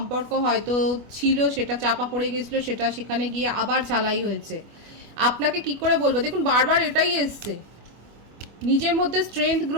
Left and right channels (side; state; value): left; late; 25 ms